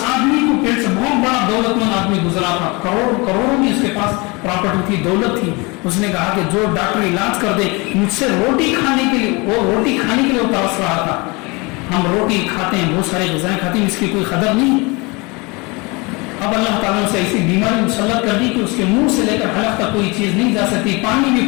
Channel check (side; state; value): right; quieter; 27.0 dB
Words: آدمی کو پیٹ سے بہت بڑا دولت مند آدمی گزرا تھا، کروڑوں کی اس کے پاس پراپرٹی تھی، دولت تھی. اس نے کہا کہ جو ڈاکٹر علاج کر دے مجھ سے روٹی کھانے کے لیے، وہ روٹی کھانے کے لیے وہ ترس رہا تھا. ہم روٹی کھاتے ہیں، بہت سارے غذائیں کھاتے ہیں، اس کی کوئی قدر نہیں. اب اللہ تعالیٰ نے اسے ایسی بیماری مسلط کر دی کہ اس کے منہ سے لے کر حلق تک کوئی چیز نہیں جا سکتی، پانی بھی